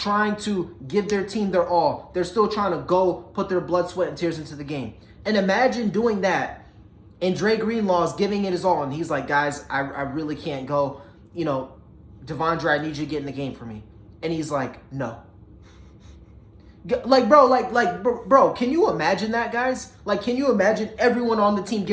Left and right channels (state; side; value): identical; both; correlation 1.00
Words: to give their team their all. They're still trying to go put their blood, sweat, and tears into the game. And imagine doing that, and Dre Greenlaw is giving it his all, and he's like, guys, I really can't go. Devondre, I need you to get in the game for me. And he's like, no. Bro, can you imagine that, guys? Like, can you imagine everyone on the team